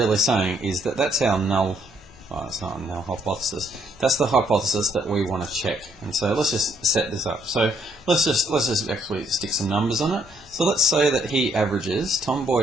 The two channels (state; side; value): normal; both; correlation 0.69